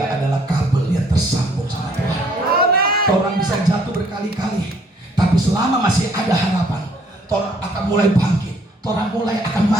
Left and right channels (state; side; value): normal; both; correlation 0.63